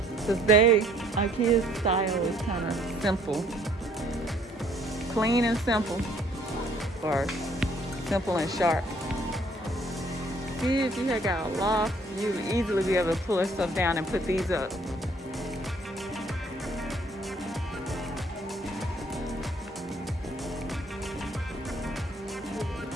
Because IKEA's style is kind of simple. Clean and simple. Or simple and sharp. See, if you had got a loft, you would easily be able to pull that stuff down and put these up.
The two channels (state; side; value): normal; both; correlation 0.61